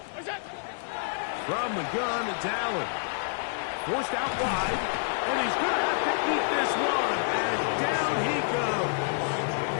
What's up? From the gun, it's Allen. Forced out wide, and he's going to have to eat this one, and down he goes.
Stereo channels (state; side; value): silent; right; digital silence